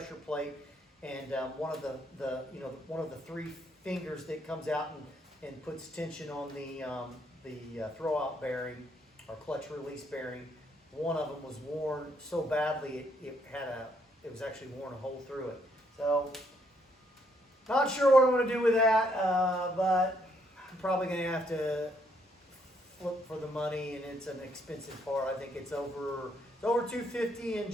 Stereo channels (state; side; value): normal; both; correlation 0.72